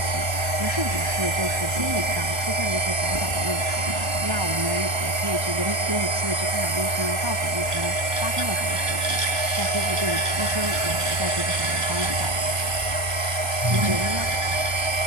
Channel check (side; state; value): left; late; 1.3 ms